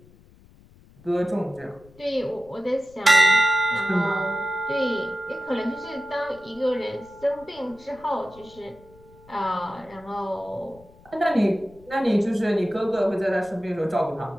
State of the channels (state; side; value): noise; left; rumble, 25 dB below the sound